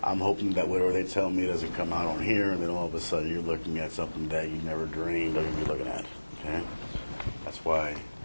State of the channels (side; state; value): both; inverted; correlation -1.00